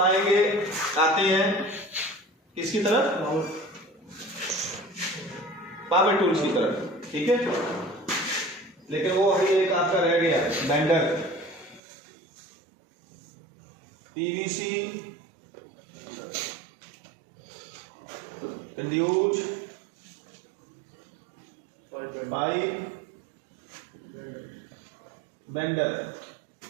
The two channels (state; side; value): drops out; left; at 11.8 s